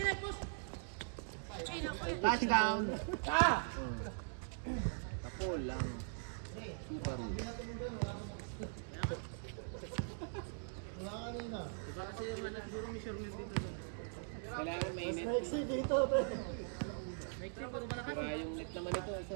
push! Touchdown! Ah! Tapol lang. Super. Kailangan may net. Sira yung net naman ito.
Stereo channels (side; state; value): left; silent; digital silence